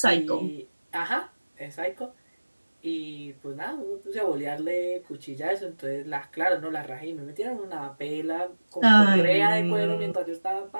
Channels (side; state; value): both; inverted; correlation -1.00